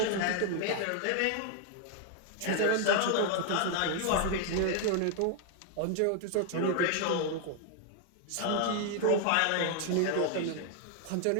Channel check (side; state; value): both; different; correlation 0.00